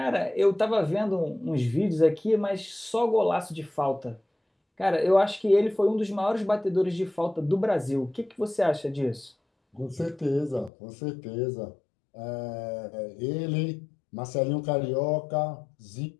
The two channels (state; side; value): drops out; right; at 10.7 s